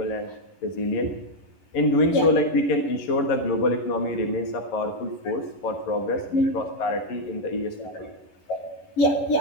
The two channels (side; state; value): right; late; 11 ms